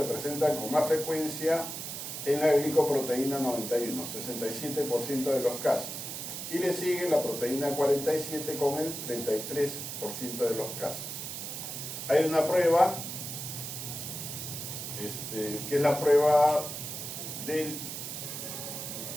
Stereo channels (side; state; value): right; noise; hiss, 7 dB below the sound